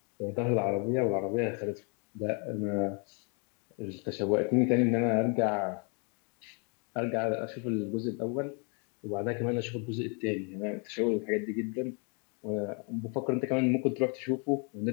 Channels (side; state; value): right; quieter; 37.2 dB